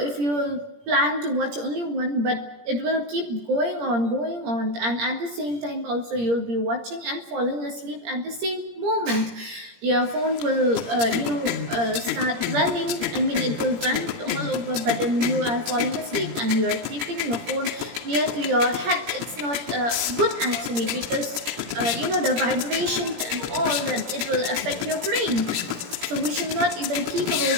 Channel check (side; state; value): left; late; 17 ms